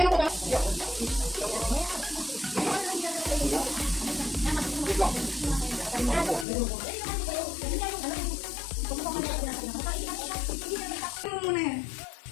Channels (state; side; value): drops out; right; at 6.5 s